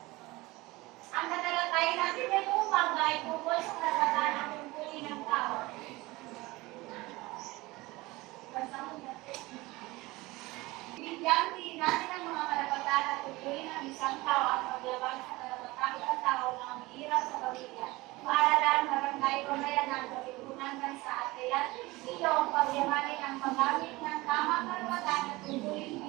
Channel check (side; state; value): left; quieter; 21.1 dB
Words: Ang tatalakayin natin ngayong umaga ay tungkol sa karapatan ng tungkulin ng tao. Bigyan din natin ang mga karapatan at tungkulin ng isang tao at paglabag sa karapatan ng tao na umiirap sa pamilya. Paaralan, barangay, pamayanan, pagkukunan bansa at kaya ito ang pagyamanin ang paggamit ng tamang karapatan at tungkulin